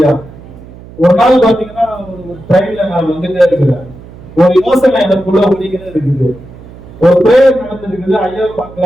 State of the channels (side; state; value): right; noise; hum, 19 dB below the sound